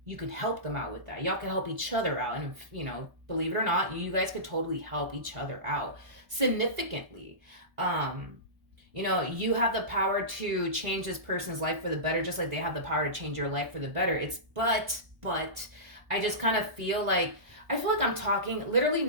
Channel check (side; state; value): left; late; 1.5 ms